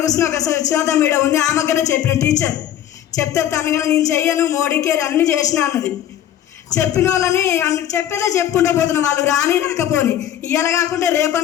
కూర్చుని ఒక సుజాత మేడం ఉంది, ఆమె దగ్గర చెప్పిన టీచర్ చెప్తే తను కానీ నేను చెయ్యను, మోడీకే అన్నీ చేసిన అన్నది. చెప్పిన వాళ్ళని చెప్పేదే చెప్పుకుంటూ పోతున్నా, వాళ్ళు రాకపోని ఇవాళ కాకుండా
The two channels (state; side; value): quieter; right; 11.1 dB